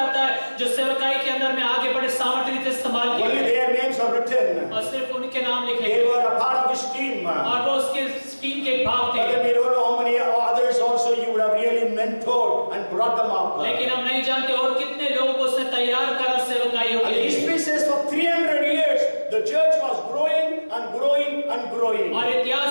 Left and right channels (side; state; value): both; inverted; correlation -1.00